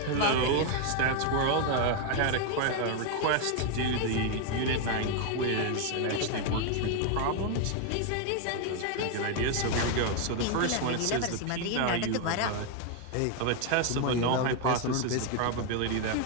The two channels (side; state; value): both; different; correlation 0.01